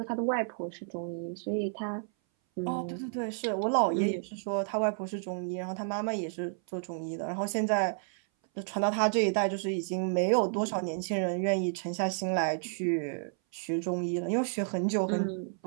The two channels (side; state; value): left; silent; 57 dB below the other